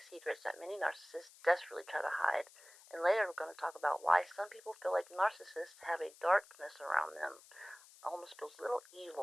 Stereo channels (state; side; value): noise; left; hiss, 22 dB below the sound